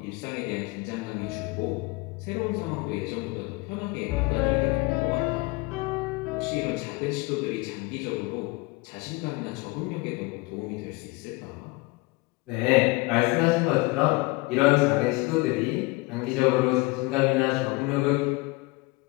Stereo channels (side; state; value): right; quieter; 24.0 dB